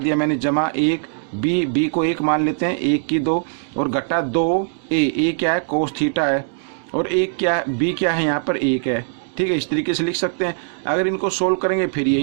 मैंने, जमा 1, b को 1 मान लेते हैं, 1 की 2 और घटा 2a क्या है, कोस थीटा है, और 1 क्या है, b क्या है, यहाँ पर 1 है, ठीक है, इस तरीके से लिख सकते हैं। अगर इनको सोल्व करेंगे फिर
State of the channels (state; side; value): silent; left; digital silence